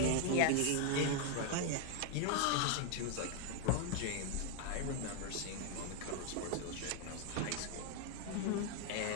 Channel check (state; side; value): different; both; correlation 0.00